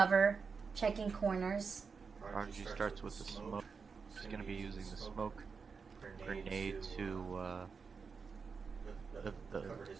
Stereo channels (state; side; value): quieter; left; 5.3 dB